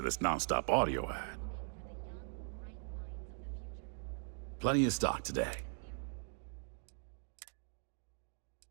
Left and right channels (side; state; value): left; silent; 51 dB below the other